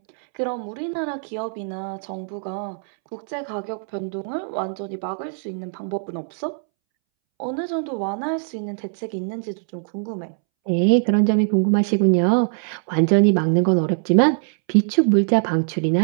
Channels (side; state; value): left; silent; 64 dB below the other